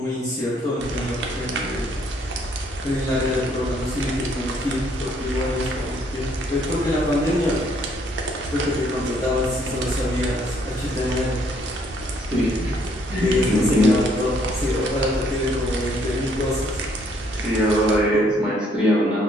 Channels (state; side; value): normal; both; correlation 0.67